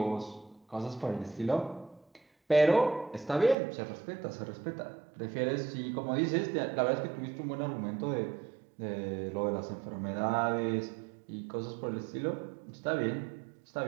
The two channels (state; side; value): drops out; left; at 3.6 s